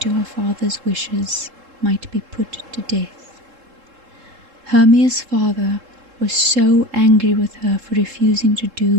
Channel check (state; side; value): late; left; 3.7 ms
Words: her father's wishes might be put to death. Hermia's father was so angry with her for refusing to